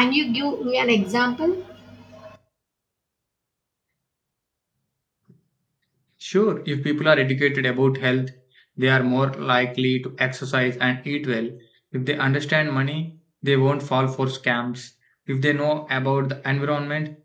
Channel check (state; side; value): identical; both; correlation 1.00